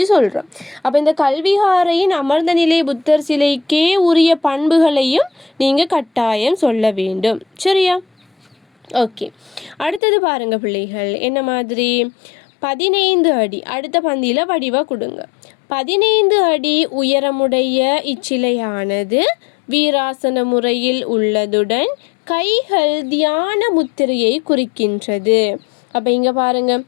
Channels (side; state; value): right; drops out; at 10.0 s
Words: சொல்கிறோம். அப்போ இந்த கல்விகாரையின் அமர்ந்த நிலை புத்தர் சிலைக்கே உரிய பண்புகளையும் நீங்கள் கட்டாயம் சொல்ல வேண்டும். சரியா? ஓகே, அடுத்தது பாருங்க பிள்ளைகள். என்ன மாதிரி? 15 அடி. அடுத்த பந்தியில் வடிவாக கொடுங்க. 15 அடி உயரமுடைய இச்சிலையானது வீராசன முறையில் உள்ளதுடன் கைகள் தியான முத்திரையை குறிக்கின்றது. அப்போ இங்கே பாருங்க,